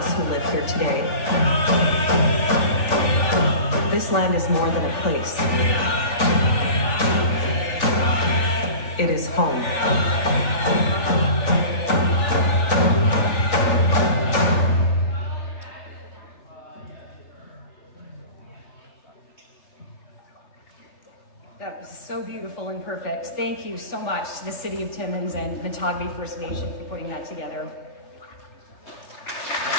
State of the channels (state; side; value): late; right; 3.4 ms